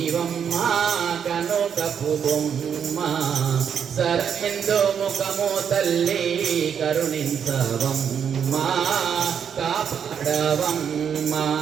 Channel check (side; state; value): left; quieter; 7.7 dB